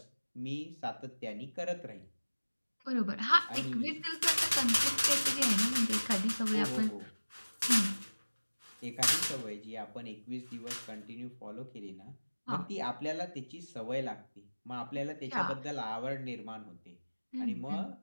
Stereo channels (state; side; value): inverted; both; correlation -1.00